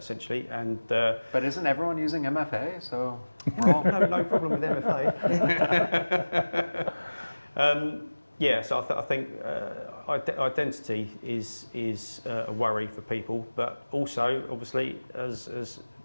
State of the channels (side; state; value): both; inverted; correlation -1.00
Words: and. But isn't everyone using MFA? So we're all no problem with MFA. Yeah, so I think identity is a worry for people, but also, obviously, as